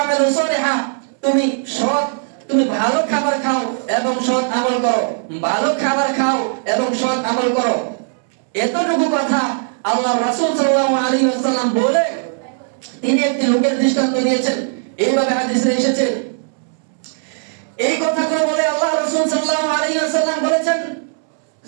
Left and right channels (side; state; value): left; silent; 67 dB below the other